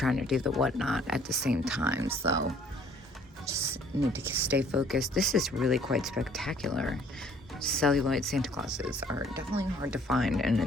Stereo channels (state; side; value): normal; both; correlation 0.58